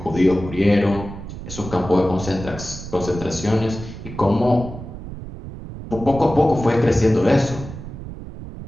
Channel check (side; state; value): right; noise; rumble, 11 dB below the sound